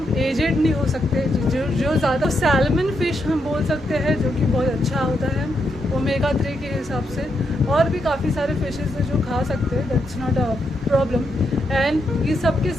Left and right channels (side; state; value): both; normal; correlation 0.81